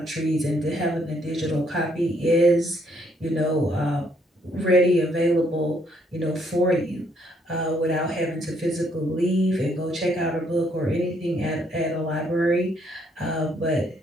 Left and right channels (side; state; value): both; normal; correlation 0.69